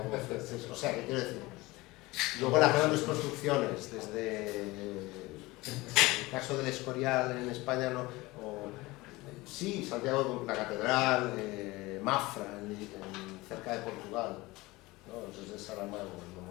O sea, ¿qué quiero decir? Luego las grandes construcciones, desde el caso del Escorial en España, sí, Santiago, la catedral, Mafra, cerca de Portugal, ¿no? Desde Saramago, el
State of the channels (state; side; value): quieter; right; 21.1 dB